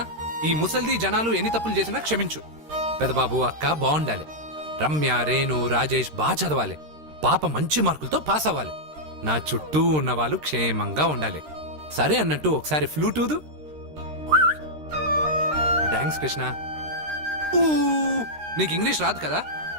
ఈ ముసల్ది జనాలు ఎన్ని తప్పులు చేసినా క్షమించు. పెదబాబు, అక్క బాగుండాలి. రమ్య, రేణు, రాజేష్ బాగా చదవాలి. పాప మంచి మార్కులతో పాస్ అవ్వాలి. నా చుట్టూ ఉన్న వాళ్ళు క్షేమంగా ఉండాలి. సరే అన్నట్టు ఒకసారి ఫ్లూట్ ఊదు. థ్యాంక్స్ కృష్ణ. ఊ, నీకు ఇంగ్లీష్ రాదు కదా,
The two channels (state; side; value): late; left; 13 ms